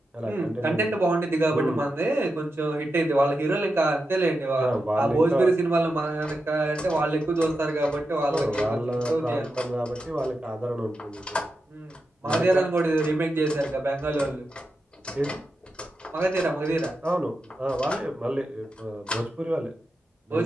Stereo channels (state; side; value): normal; both; correlation 0.89